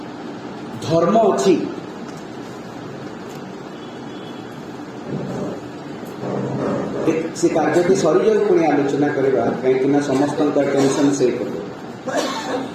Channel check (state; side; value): identical; both; correlation 1.00